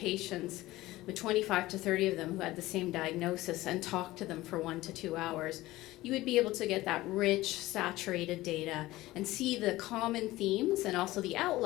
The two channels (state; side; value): quieter; right; 17.7 dB